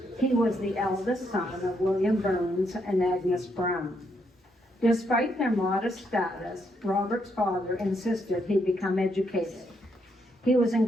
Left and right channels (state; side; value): normal; both; correlation 0.76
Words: He was the eldest son of William Burns and Agnes Brown. Despite their modest status, Robert's father insisted he become educated. He was